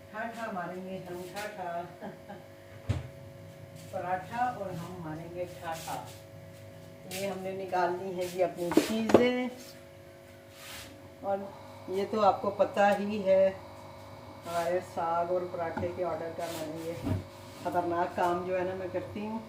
ठाठा मारेंगे हम, ठाठा पराठा और हम मारेंगे ठाठा। ये हमने निकालनी है जी अपनी चीज़ें, और ये तो आपको पता ही है हमारे साग और पराठे के ऑर्डर का मैंने ये ख़तरनाक काम जो है ना मैं करती हूँ,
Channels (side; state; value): both; identical; correlation 1.00